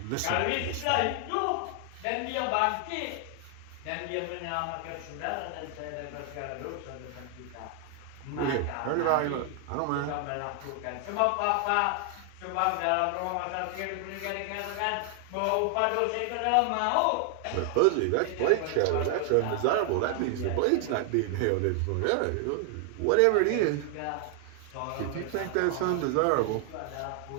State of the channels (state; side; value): different; both; correlation 0.00